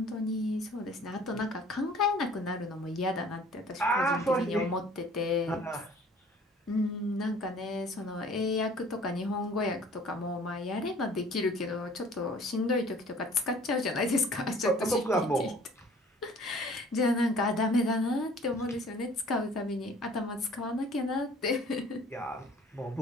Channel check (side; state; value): both; normal; correlation 0.52